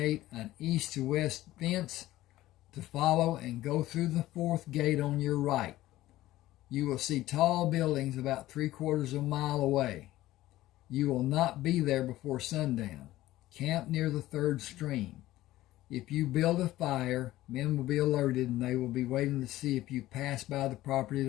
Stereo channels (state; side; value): quieter; right; 15.8 dB